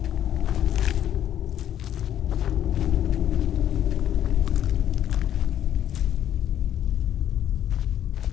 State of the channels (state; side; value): quieter; right; 10.8 dB